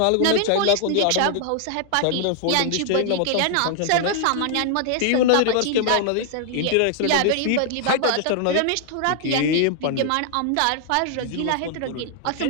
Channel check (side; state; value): both; different; correlation 0.00